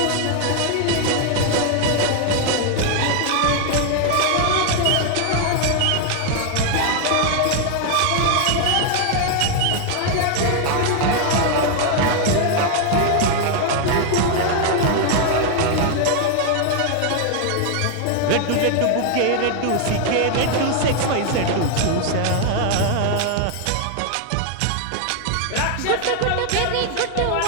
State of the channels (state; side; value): different; both; correlation 0.00